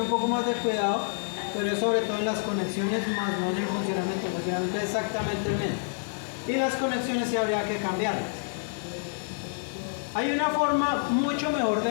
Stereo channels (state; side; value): silent; right; digital silence